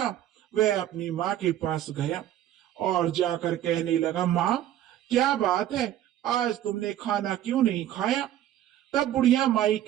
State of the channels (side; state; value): left; quieter; 12.0 dB